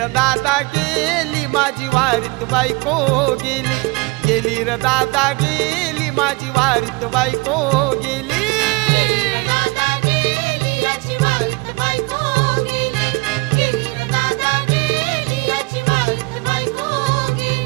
दादा गेली माझी वारीत बायको गेली, गेली र दादा गेली माझी वारीत बायको गेली.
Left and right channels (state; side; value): quieter; left; 26.1 dB